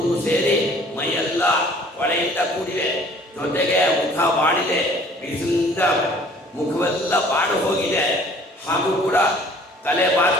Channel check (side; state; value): both; normal; correlation 0.53